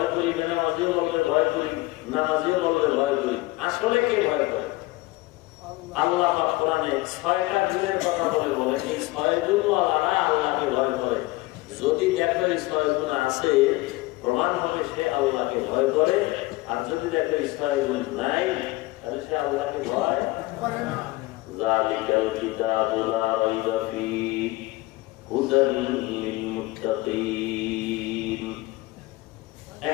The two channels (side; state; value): right; quieter; 20.4 dB